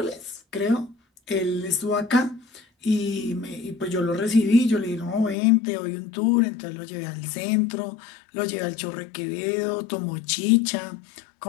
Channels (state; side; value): drops out; right; at 5.4 s